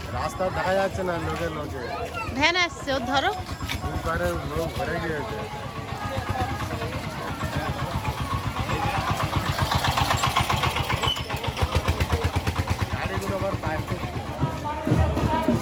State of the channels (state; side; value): identical; both; correlation 1.00